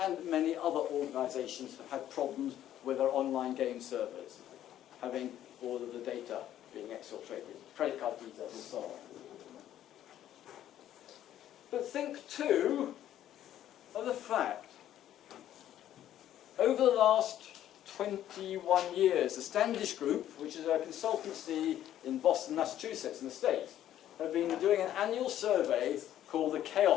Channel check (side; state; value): right; quieter; 11.8 dB